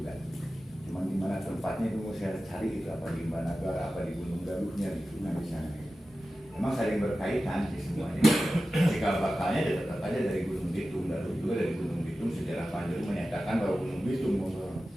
Cuman di mana tempatnya itu mesti saya cari itu apa di Imban Nagara apa di Gunung Galuhnya gitu di sana. Memang saling berkaitan di semuanya. Cikal bakalnya tetap aja dari Gunung Bitung, Galuh juga dari Gunung Bitung. Sejarah Panjalu menyatakan bahwa Gunung Bitung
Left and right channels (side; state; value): both; normal; correlation 0.94